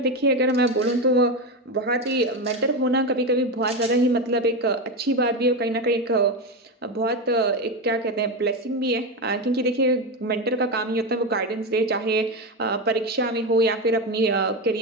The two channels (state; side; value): normal; both; correlation 0.15